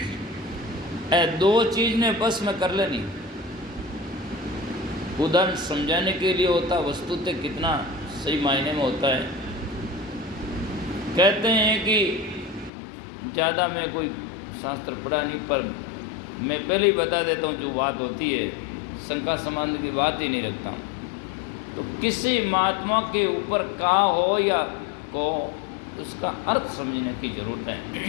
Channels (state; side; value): drops out; right; at 12.7 s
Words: दो चीज ने बस में कर लेनी। उदाहरण समझाने के लिए होता, वस्तुतः कितना सही मायने में होता है। कहते हैं कि ज़्यादा मैं कोई शास्त्र पढ़ा नहीं, पर मैं पहले ही बता देता हूँ जो बात होती है, शंका संबंध की बात ही नहीं रखता। तो किसी महात्मा के ऊपर कहा हो या को, उसका अर्थ समझने की जरूरत है।